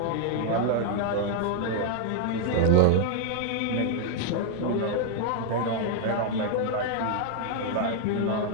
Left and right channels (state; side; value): different; both; correlation 0.00